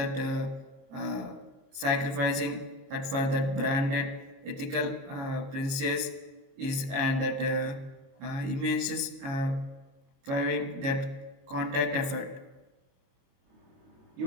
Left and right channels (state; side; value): late; left; 22 ms